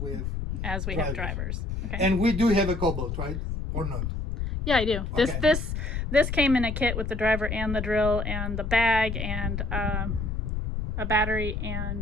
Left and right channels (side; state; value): left; noise; rumble, 2 dB below the sound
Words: have. as we have drivers? Okay. And we do have a Cobalt, right? Or not? Yeah, I do. Okay. This came in a kit with the driver and the drill and the bag and a battery